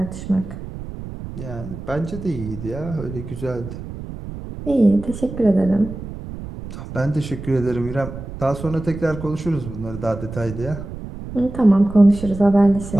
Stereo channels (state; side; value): noise; right; rumble, 10 dB below the sound